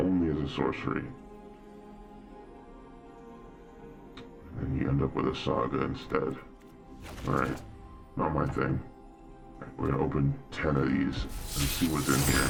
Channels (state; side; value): identical; both; correlation 1.00